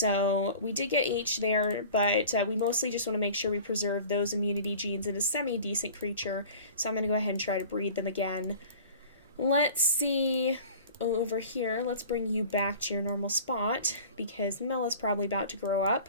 we did get H there, but we mostly just want to make sure we preserve those immunity genes in a semi-decent creature. So I'm going to go ahead and try to breed them again. Let's see. Oh, over here, let's bring you back to your normal spot, because Mella's probably about to grow up.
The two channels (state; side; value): inverted; both; correlation -0.42